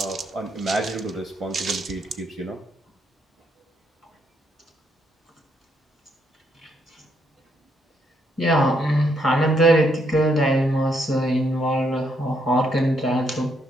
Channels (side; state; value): both; normal; correlation 0.74